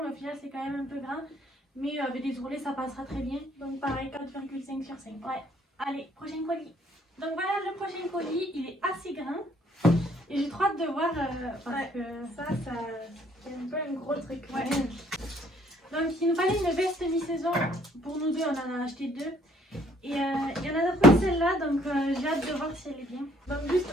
mais au final c'est quand même un peu grand. Mais avec des ourlets ça passera très bien. Donc pareil, 4,5 sur 5. Ouais. Allez, prochain colis. Donc voilà le prochain colis, il est assez grand. Et j'ai trop hâte de voir parce que ça c'est un peu un gros truc. Ouais. Donc il nous fallait une veste mi-saison. Pour nous deux, on en a acheté deux. Et il y en a d'autres celle-là, donc j'ai hâte de voir si elle est bien. Donc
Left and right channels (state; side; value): normal; both; correlation 0.63